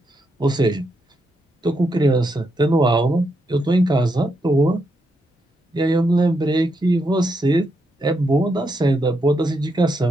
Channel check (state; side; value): normal; both; correlation 0.81